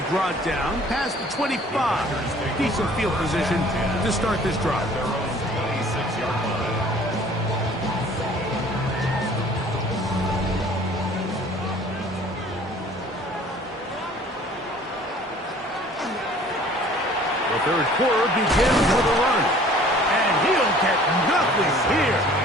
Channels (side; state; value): both; normal; correlation 0.52